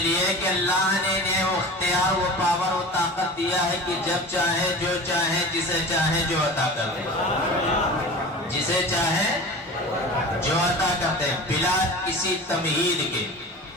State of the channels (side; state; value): both; normal; correlation 0.35